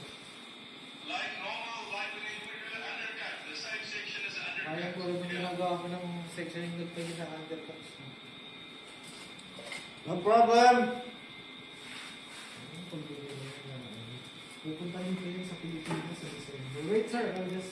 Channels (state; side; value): identical; both; correlation 1.00